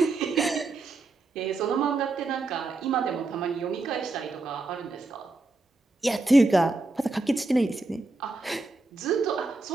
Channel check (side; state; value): left; quieter; 3.3 dB